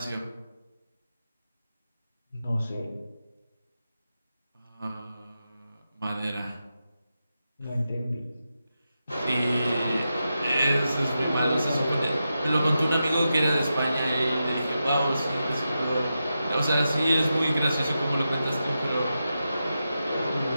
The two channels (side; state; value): both; inverted; correlation -0.89